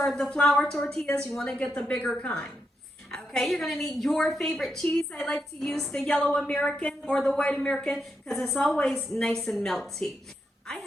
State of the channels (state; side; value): normal; both; correlation 0.83